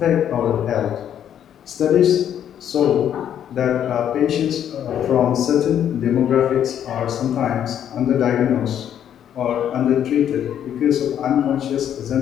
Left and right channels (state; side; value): quieter; right; 9.8 dB